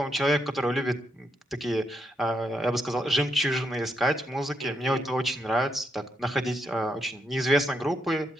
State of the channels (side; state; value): both; normal; correlation 0.79